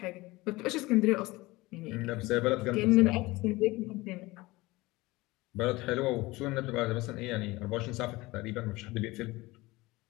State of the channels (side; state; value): right; quieter; 20.9 dB